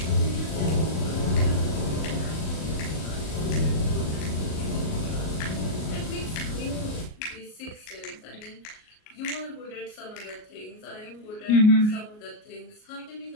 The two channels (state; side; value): late; right; 38 ms